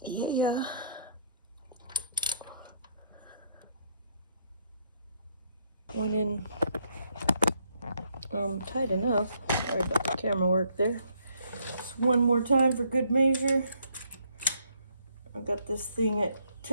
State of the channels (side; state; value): both; inverted; correlation -0.69